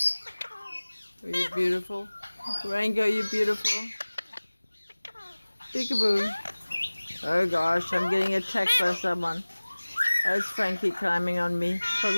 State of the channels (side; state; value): both; inverted; correlation -1.00